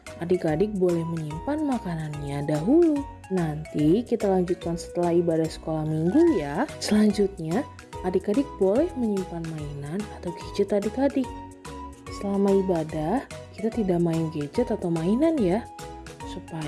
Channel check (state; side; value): identical; both; correlation 1.00